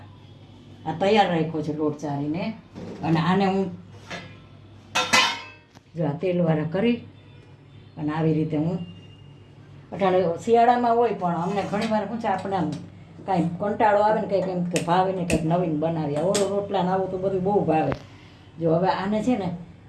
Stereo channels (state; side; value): identical; both; correlation 1.00